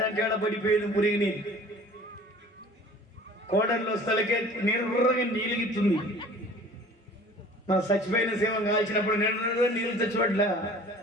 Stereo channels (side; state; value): both; normal; correlation 0.47